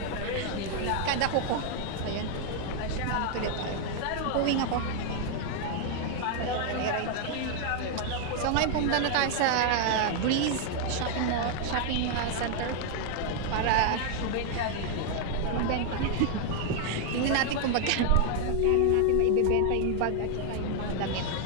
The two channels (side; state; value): both; different; correlation 0.00